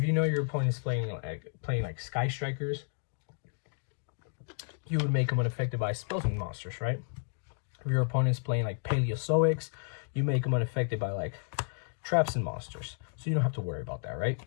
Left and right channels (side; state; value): right; silent; digital silence